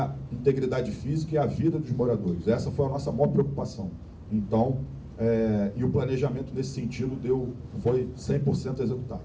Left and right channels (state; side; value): identical; both; correlation 1.00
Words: integridade física e a vida dos moradores. Essa foi a nossa maior preocupação. Então, e o planejamento nesse sentido foi 100% executado.